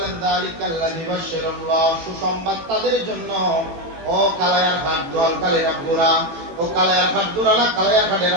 যালিকাল্লাযী বাশশারাল্লাহ, সুসংবাদ তাদের জন্য। ও কালায়ার ঘাট দোয়ালকালের আব্বুরা, ও কালায়ার ঘাট দুরালা কালায়ার ঘাটের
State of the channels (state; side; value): late; left; 18 ms